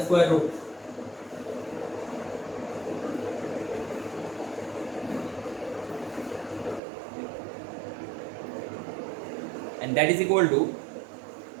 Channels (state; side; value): drops out; left; at 6.8 s